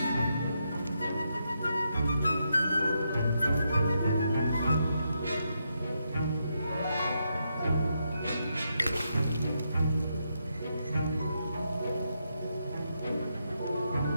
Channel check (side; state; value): both; inverted; correlation -0.81